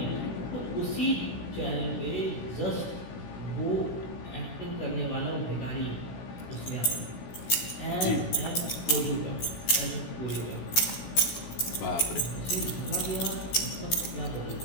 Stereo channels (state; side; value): late; right; 16 ms